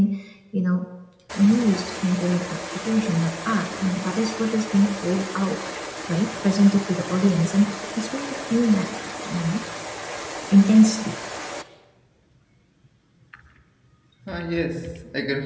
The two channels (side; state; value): both; identical; correlation 1.00